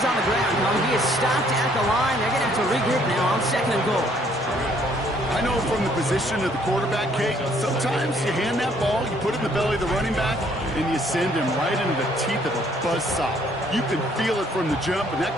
on the ground. He is stopped at the line. They're going to have to regroup now on 2nd and goal. I know from the position of the quarterback, Kate, sometimes you hand that ball, you put it in the belly of the running back, and you send him right into the teeth of a buzzsaw. You can feel it from the jump, and that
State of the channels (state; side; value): normal; both; correlation 0.64